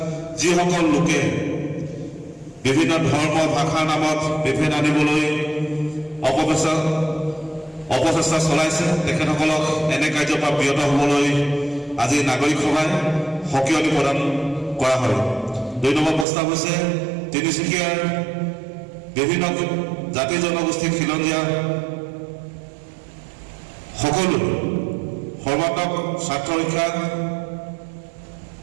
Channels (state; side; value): drops out; left; at 16.2 s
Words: যিসকল লোকে বিভিন্ন ধৰ্ম ভাষাৰ নামত বিভেদ আনিবলৈ অপচেষ্টা চলাইছে তেখেতসকলক এনে কাৰ্যৰ পৰা বিৰত হ'বলৈ আজি নাগৰিক সভাই সকিয়নি প্ৰদান কৰা হয়। 2 নম্বৰ প্ৰস্তাৱ হৈছে তিনিচুকীয়াৰ বিভিন্ন জাতি জনগোষ্ঠী খিলঞ্জীয়া সকলো সৰ্বাত্মক স্বাৰ্থ ৰক্ষা